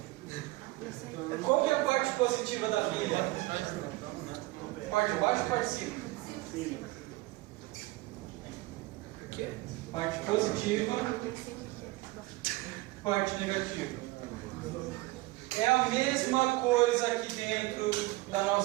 Qual que é a parte positiva da pilha? Parte de baixo ou parte de cima? Sim. Parte positiva, parte negativa. É a mesma coisa aqui dentro da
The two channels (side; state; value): left; quieter; 20.9 dB